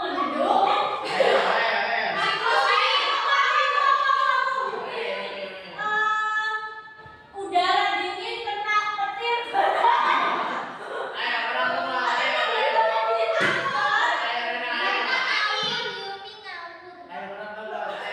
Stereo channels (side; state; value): both; identical; correlation 1.00